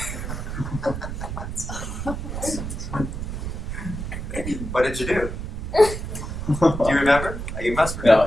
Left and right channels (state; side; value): noise; right; rumble, 5 dB below the sound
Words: What did you do? Do you remember? You must